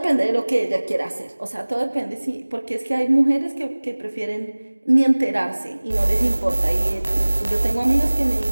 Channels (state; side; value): inverted; both; correlation -1.00